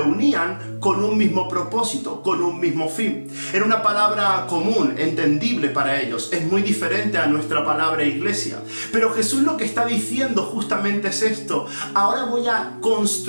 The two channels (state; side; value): inverted; both; correlation -1.00